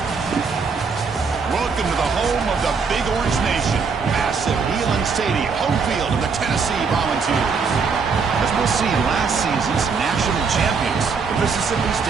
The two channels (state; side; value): quieter; left; 5.2 dB